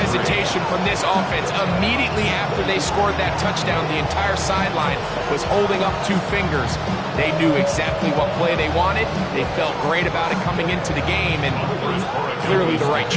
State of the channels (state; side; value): identical; both; correlation 1.00